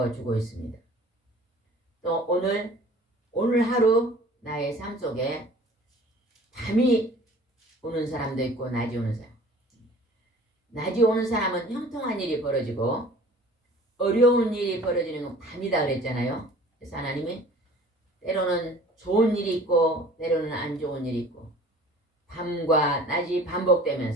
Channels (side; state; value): both; normal; correlation 0.47